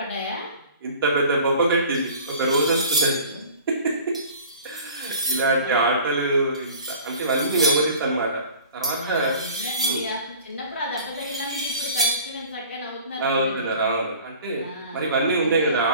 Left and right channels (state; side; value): inverted; both; correlation -0.45